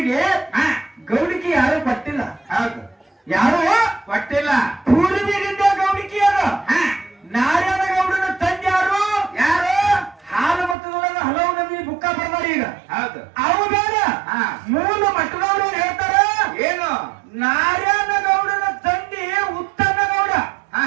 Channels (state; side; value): drops out; left; at 10.8 s